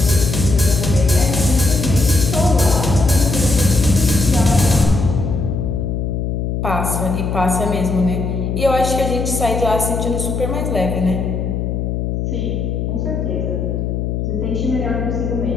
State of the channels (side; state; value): left; noise; hum, 2 dB below the sound